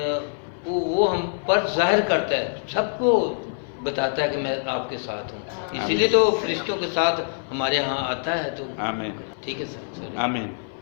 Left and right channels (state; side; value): silent; right; 58 dB below the other